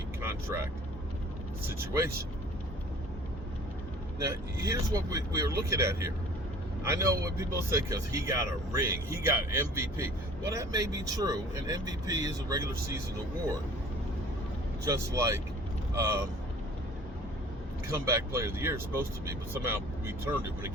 contract situation. Now, here's what we are looking at here. I know what people say because he got a ring, he got MVP. Well, that may be true, and MVP is a regular season award. Just like comeback player of the year is supposed to be, but somehow we turned it when it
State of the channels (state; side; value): normal; both; correlation 0.48